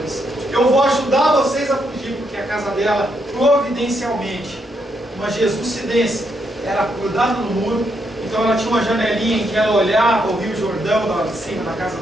Eu vou ajudar vocês a fugir, porque a casa dela, providencialmente, uma jesucidência, era grudada no muro. Então ela tinha uma janelinha em que ela olhava o Rio Jordão lá de cima da casa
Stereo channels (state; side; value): normal; both; correlation 0.78